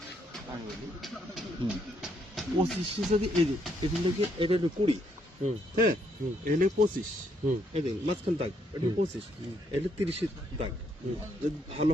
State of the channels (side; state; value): both; normal; correlation 0.73